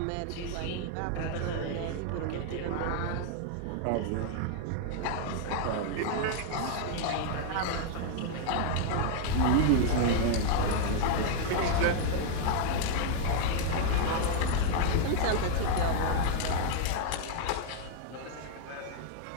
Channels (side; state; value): both; different; correlation 0.00